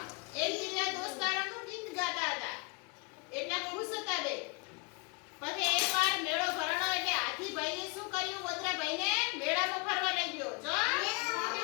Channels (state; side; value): quieter; right; 30.7 dB